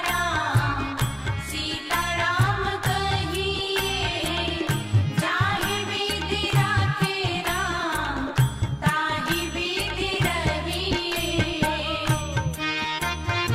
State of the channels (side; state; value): both; identical; correlation 1.00